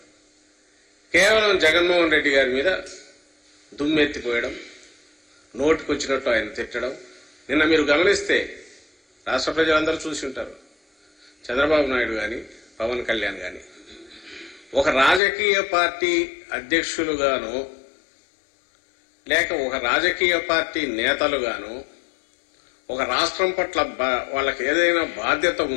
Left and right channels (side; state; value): right; drops out; at 15.2 s